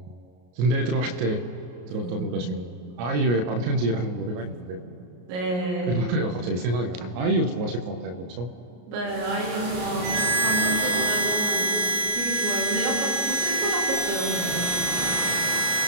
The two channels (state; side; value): late; left; 33 ms